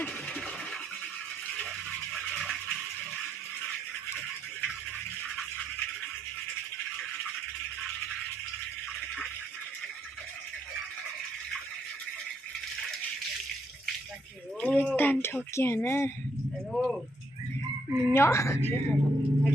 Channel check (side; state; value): both; normal; correlation 0.74